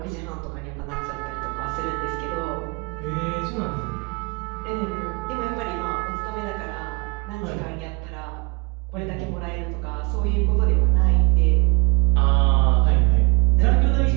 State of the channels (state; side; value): quieter; left; 28.4 dB